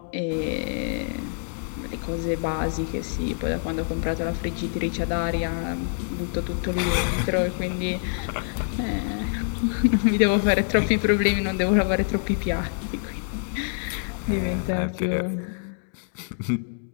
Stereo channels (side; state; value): right; silent; digital silence